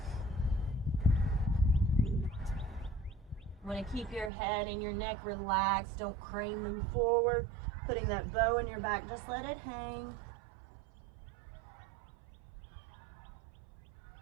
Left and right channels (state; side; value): drops out; left; at 4.3 s